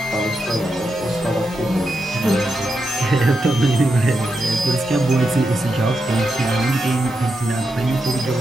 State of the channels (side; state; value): both; normal; correlation 0.86